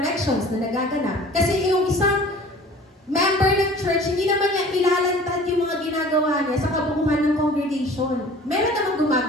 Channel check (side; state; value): both; normal; correlation 0.46